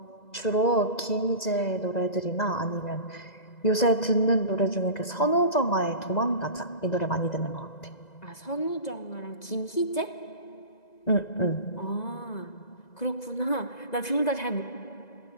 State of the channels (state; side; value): late; right; 2.0 ms